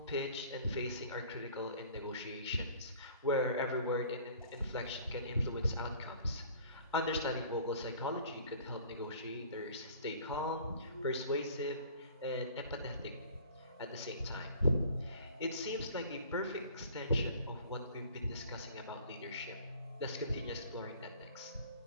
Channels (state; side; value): inverted; both; correlation -0.49